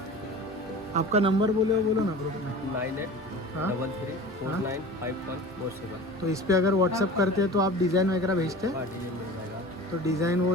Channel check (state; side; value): normal; both; correlation 0.37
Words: आपका नंबर बोलो ना ग्रुप में। 9833495147। तो इस पे अगर व्हाट्सअप करते हैं तो आप डिज़ाइन वगैरह भेजते हैं? हाँ, डिजाइन मिल जाएगा। तो डिज़ाइन